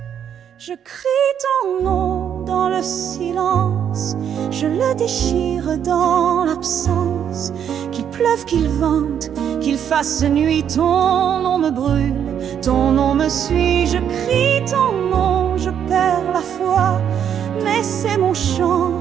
Je crie ton nom dans le silence, je le déchire dans l'absence. Qu'il pleuve, qu'il vente, qu'il fasse nuit, ton nom me brûle, ton nom me suit. Je crie ton nom, je perds la foi, mais c'est mon chant,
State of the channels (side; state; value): left; quieter; 8.8 dB